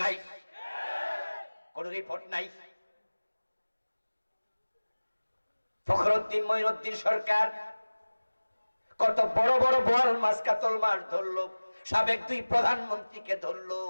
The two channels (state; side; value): inverted; both; correlation -1.00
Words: নাই। কোন রিপোর্ট নাই। ফখরুদ্দিন মঈনুদ্দিন সরকার কত বড় বড় বোয়াল মাছ কাতল মাছ ধরলো, সাবেক 2 প্রধানমন্ত্রীকে ধরলো,